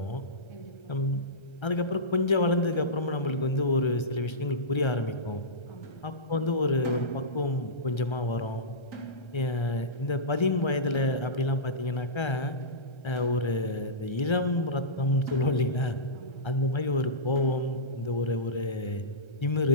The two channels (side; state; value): right; late; 1.3 ms